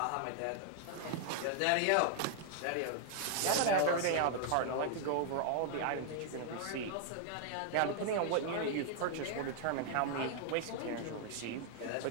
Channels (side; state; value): both; different; correlation 0.00